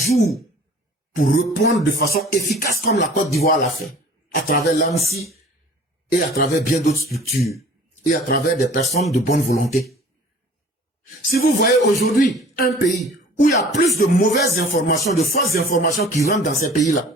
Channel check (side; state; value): both; normal; correlation 0.47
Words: pour répondre de façon efficace comme la Côte d'Ivoire l'a fait, à travers l'ANSI et à travers bien d'autres structures et à travers des personnes de bonne volonté. Si vous voyez aujourd'hui un pays où il y a plus de mauvaises informations, de fausses informations qui rentrent dans ces pays-là,